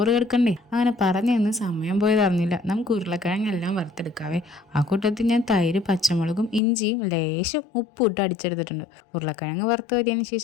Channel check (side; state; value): right; drops out; at 6.6 s